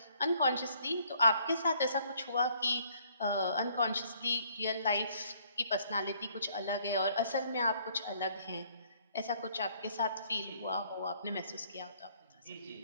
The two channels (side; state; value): both; inverted; correlation -0.64